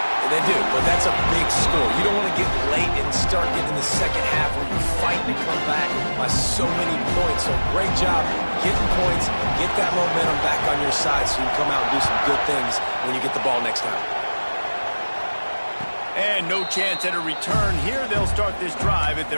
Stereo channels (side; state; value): both; inverted; correlation -1.00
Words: They do, but that's a big score. You don't want to get late and start getting the second half where you're fighting to come back by so many points. So great job getting points, get that momentum back on your side so you can come out and do some good things when you get the ball next time. And no chance at a return here. They'll start this drive at